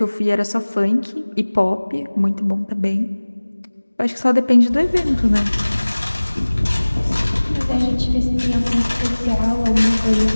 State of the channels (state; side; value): inverted; both; correlation -1.00